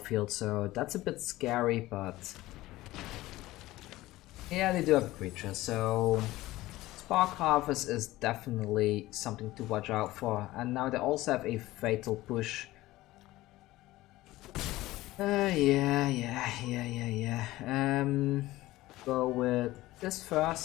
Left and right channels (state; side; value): quieter; right; 17.5 dB